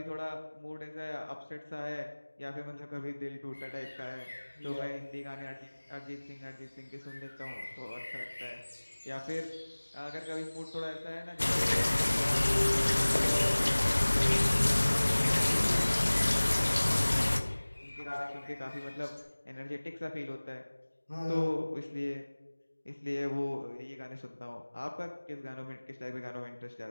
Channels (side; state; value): both; inverted; correlation -1.00